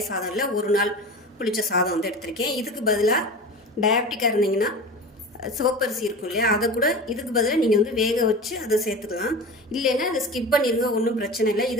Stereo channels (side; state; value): both; normal; correlation 0.32